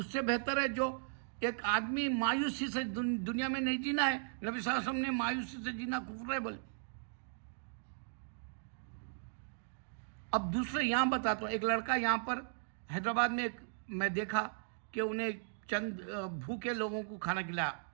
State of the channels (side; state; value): left; silent; digital silence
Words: سے بہتر ہے جو ایک آدمی مایوسی سے دنیا میں نہیں جینا ہے. نبی صلی اللہ علیہ وسلم نے مایوسی سے جینا کفر ہے بولے. اب دوسرے یہاں بتاتا ہوں, ایک لڑکا یہاں پر حیدرآباد میں میں دیکھا کہ انہیں چند بھوکے لوگوں کو کھانا کھلایا